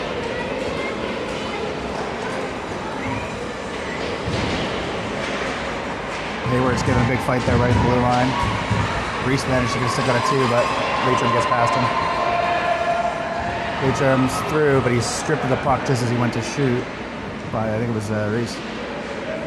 Hayward's giving a big fight there right at the blue line. Reese managed to get a stick out of two, but Leitrim gets past him. Leitrim's through, but he's stripped of the puck just as he went to shoot by, I think it was Reese.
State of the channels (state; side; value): identical; both; correlation 1.00